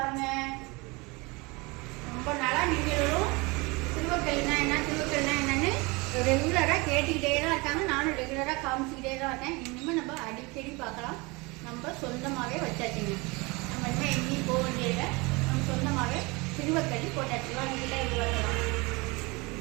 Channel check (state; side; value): quieter; left; 25.9 dB